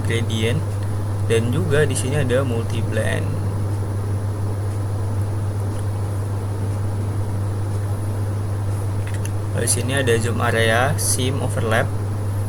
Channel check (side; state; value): both; identical; correlation 1.00